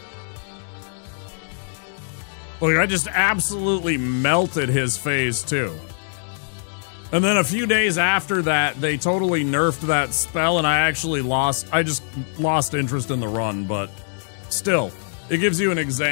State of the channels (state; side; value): silent; right; digital silence